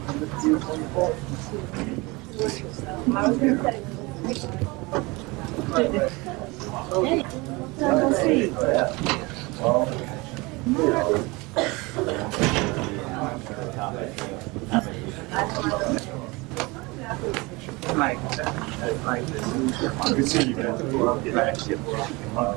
Good seeing you guys.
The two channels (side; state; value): left; quieter; 24.7 dB